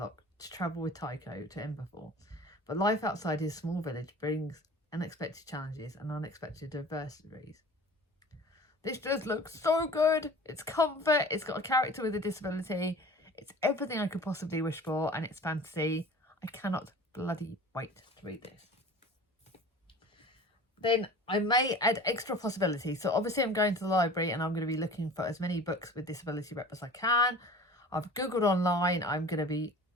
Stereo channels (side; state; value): both; normal; correlation 0.41